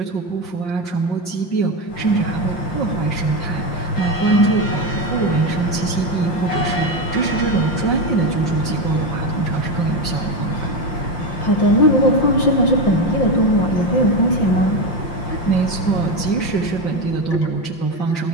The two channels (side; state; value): right; late; 5.8 ms